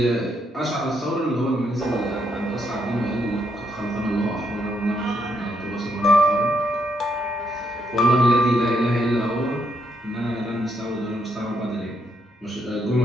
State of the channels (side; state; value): both; normal; correlation 0.76